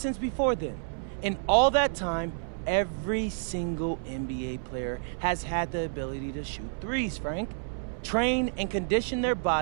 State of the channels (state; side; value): silent; left; 58 dB below the other